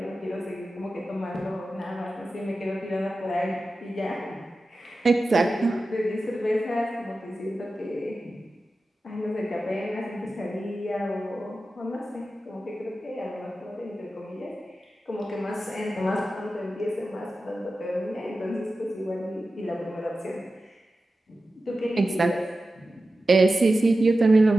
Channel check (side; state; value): both; normal; correlation 0.93